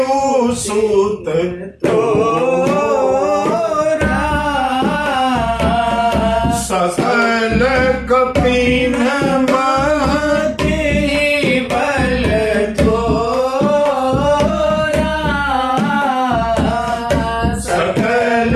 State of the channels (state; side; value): identical; both; correlation 1.00